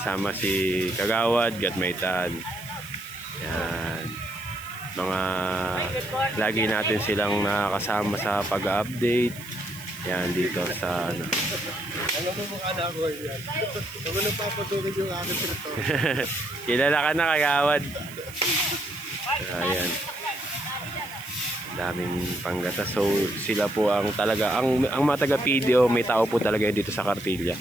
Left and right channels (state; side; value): noise; right; hiss, 17 dB below the sound